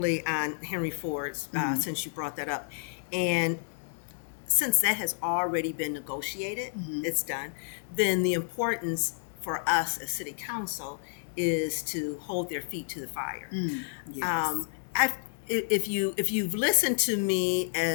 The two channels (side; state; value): right; silent; digital silence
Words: on Henry Ford's, since you brought that up. And since that has already been negotiated, it's done, then the importance for us as city council is to hold their feet to the fire. Yes. If you've listened to me